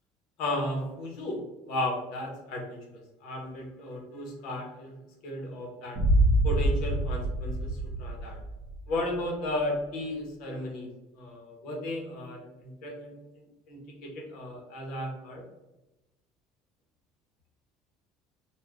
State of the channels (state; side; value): normal; both; correlation 0.47